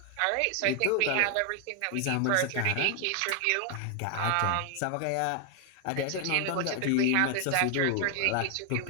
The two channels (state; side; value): different; both; correlation 0.00